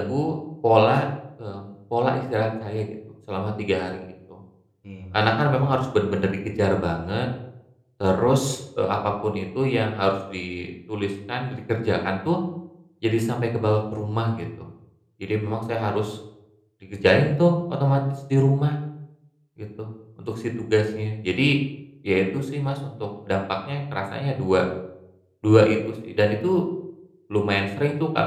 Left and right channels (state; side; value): identical; both; correlation 1.00